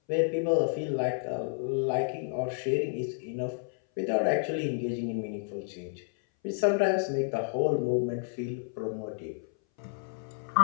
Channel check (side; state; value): right; silent; 57 dB below the other